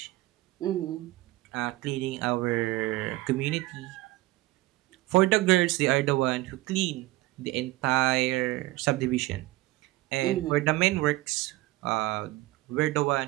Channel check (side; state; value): left; quieter; 18.7 dB